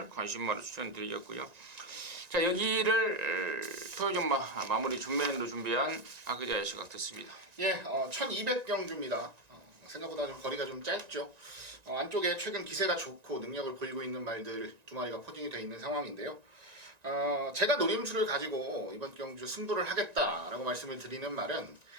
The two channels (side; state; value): left; late; 1.9 ms